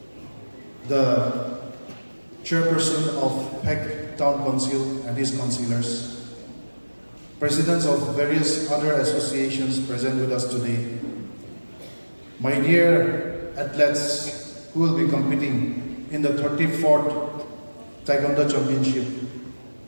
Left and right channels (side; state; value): both; inverted; correlation -1.00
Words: the chairperson of Peck Town Council and his councillors, presidents of various other associations present with us today, my dear athletes who will be competing in the 34th Taekwondo Championship